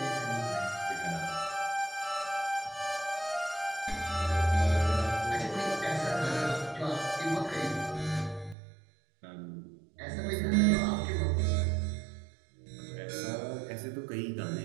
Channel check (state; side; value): drops out; left; at 8.6 s